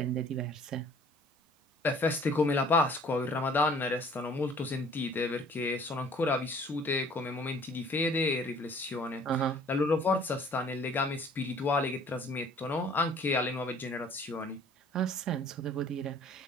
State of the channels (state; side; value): normal; both; correlation 0.54